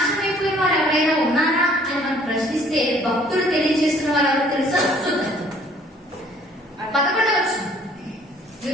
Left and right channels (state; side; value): normal; both; correlation 0.57